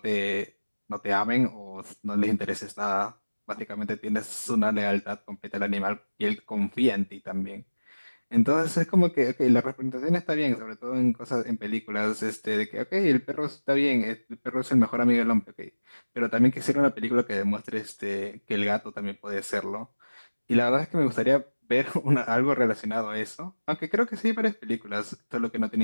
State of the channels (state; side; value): inverted; both; correlation -1.00